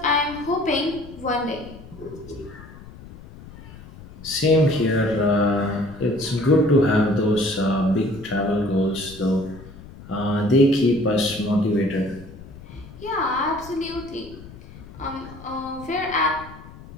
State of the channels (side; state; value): left; noise; rumble, 17 dB below the sound